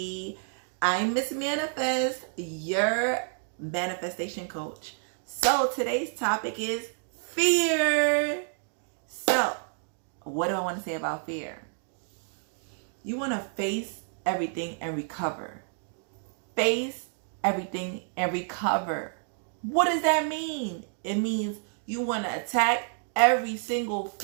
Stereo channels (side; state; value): left; silent; 58 dB below the other